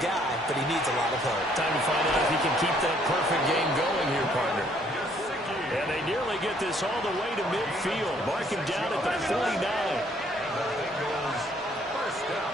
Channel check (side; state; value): both; normal; correlation 0.65